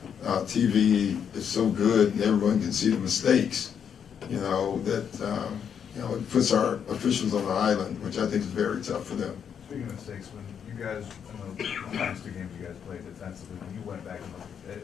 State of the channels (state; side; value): quieter; right; 7.8 dB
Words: TV is so good and everyone can see the mistakes, you know, that, you know, it puts our officials on the island, which I think is very tough for them. Speaking of mistakes, when you guys, in the last 2 games you guys played defensively, when you went back and looked,